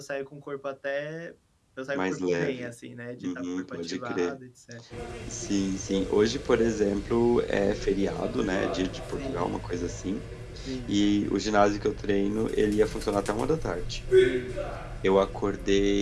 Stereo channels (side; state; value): both; identical; correlation 1.00